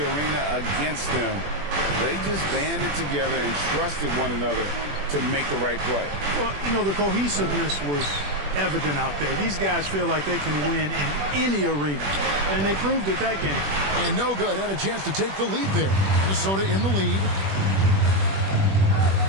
arena against them, they just banded together and trusted one another to make the right play. Well, you know, the cohesiveness was evident out there. These guys feel like they can win in any arena, and they proved it that game. And no good. Had a chance to take the lead there. Minnesota in the lead.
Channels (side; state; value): left; late; 21 ms